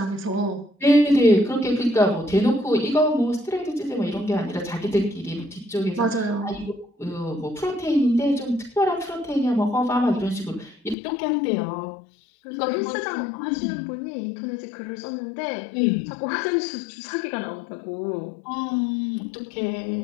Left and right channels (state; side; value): drops out; right; at 11.0 s